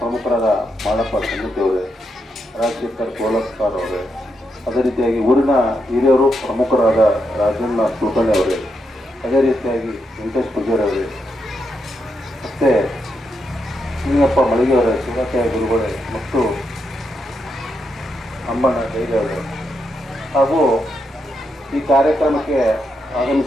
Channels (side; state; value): both; normal; correlation 0.82